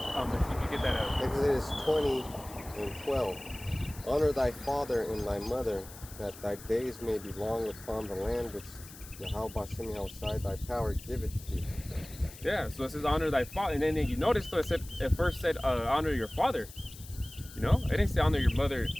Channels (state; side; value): noise; left; hiss, 17 dB below the sound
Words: you could get that out. Exodus 20:12. Honor thy father and thy mother, that thy days may be long upon the land which Yahweh Bashem Yahushai thy power giveth thee. Yeah, so it says honor thy father, and then you notice though it first said honor your father. It didn't say honor your mother